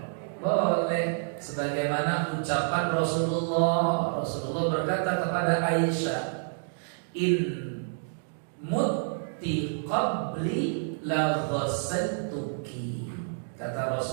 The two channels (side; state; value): left; silent; digital silence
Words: Boleh. Sebagaimana ucapan Rasulullah berkata kepada Aisyah, in mutti qabli la ghassaltuki. Kata